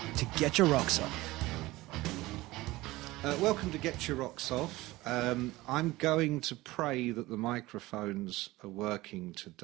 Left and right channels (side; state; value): left; quieter; 19.1 dB